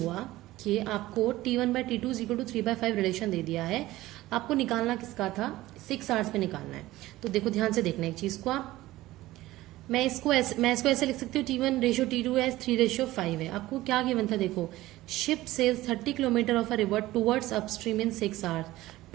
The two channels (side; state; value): left; quieter; 17.0 dB